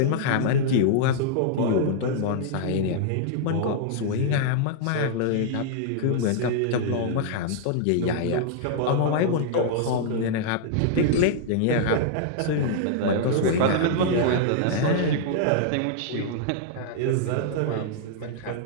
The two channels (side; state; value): both; different; correlation -0.01